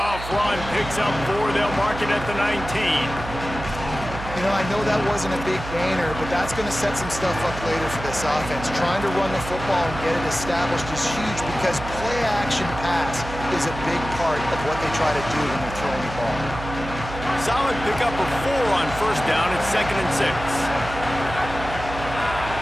run, picks up 4. They'll mark it at the 19. You know, I know that wasn't a big gainer, but that's going to set some stuff up later for this offense. Trying to run the football and get it established is huge because play-action pass is a big part of what they try to do when they're throwing the ball. Solid pickup of 4 on 1st down at 2nd and 6.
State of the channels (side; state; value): right; noise; hum, 10 dB below the sound